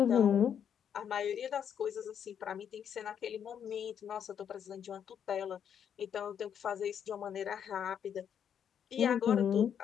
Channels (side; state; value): right; quieter; 8.5 dB